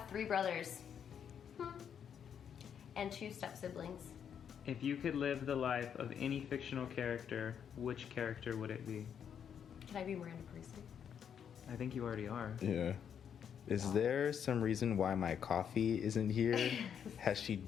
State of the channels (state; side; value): quieter; right; 8.1 dB